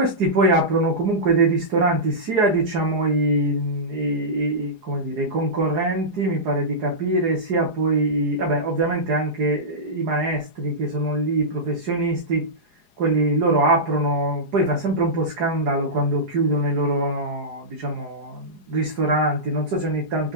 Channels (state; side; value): late; left; 4.8 ms